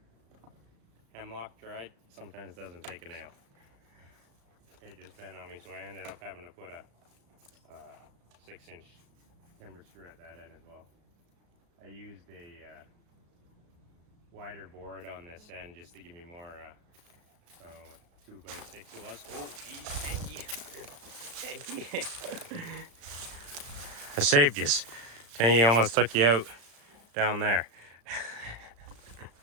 Hemlock dried sometimes doesn't take a nail. It just bent on me, so I ended up having to put a 6-inch timber screw at that end as well. I used a wider board on this end just to give me more, 2x6 it was. Oh, geez, thank you. Thank you. I saved you. Tangy almost took you out down there.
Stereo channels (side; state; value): left; late; 35 ms